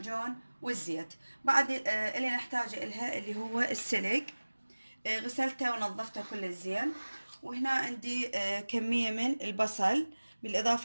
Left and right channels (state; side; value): inverted; both; correlation -1.00